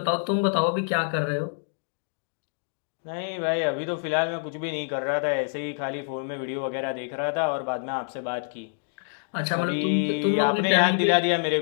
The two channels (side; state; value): right; silent; digital silence